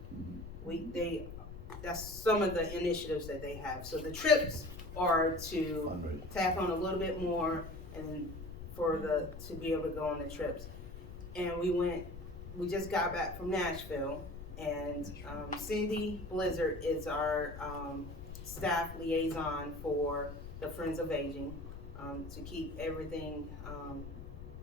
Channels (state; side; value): noise; left; rumble, 11 dB below the sound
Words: That's some of the initiatives that they have. So the trips are to Fundraiser. tap on a little bit more and to be able to go on the trips. And we just got back from Nashville, and Cindy Blizzard is our staff liaison for the Friends of Aging, to keep everything,